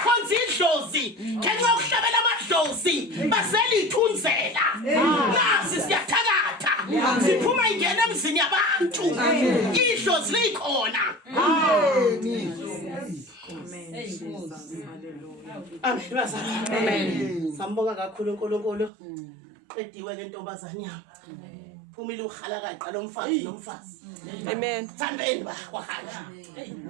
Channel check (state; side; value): drops out; left; at 18.9 s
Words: idlozi, ngeke ukuhlabela amadlozi, baselithunzela. Nasi siyathakatha. Siphuma ingene emzini yabantu. Idlozi likhona. Amen bazalwane. Amen. Sambonga kakhulu uNkulunkulu. Qediwe ke ntombazane yami. Amen. Phumile ukhala kaqala umfazi nomfazi. Amen. Thambeni bahanja.